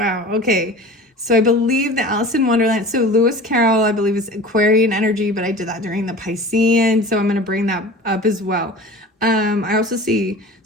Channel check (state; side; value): normal; both; correlation 0.39